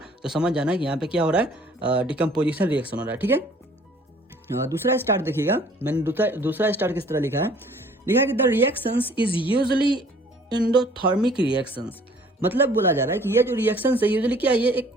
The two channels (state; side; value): normal; both; correlation 0.55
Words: तो समझ जाना है कि यहाँ पे क्या हो रहा है, डिकम्पोजिशन रिएक्शन हो रहा है। ठीक है, दूसरा स्टार देखिएगा, मैंने दूसरा स्टार किस तरह लिखा है कि the reactions is usually endothermic reactions. मतलब बोला जा रहा है कि ये जो रिएक्शन है यूजुअली क्या है, ये एक